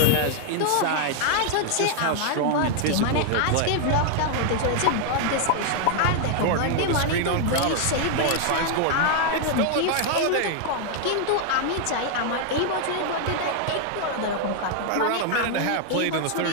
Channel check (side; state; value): both; different; correlation 0.00